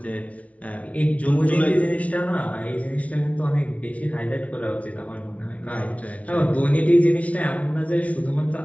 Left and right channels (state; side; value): late; right; 0.066 ms